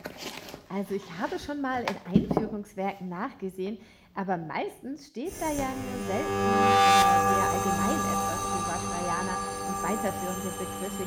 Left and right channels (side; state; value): both; identical; correlation 1.00